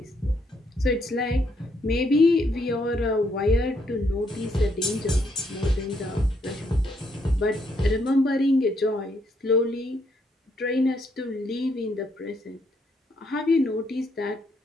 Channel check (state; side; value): normal; both; correlation 0.73